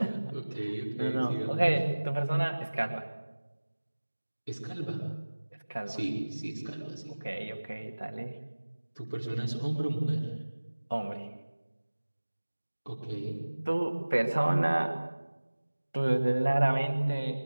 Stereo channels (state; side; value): inverted; both; correlation -1.00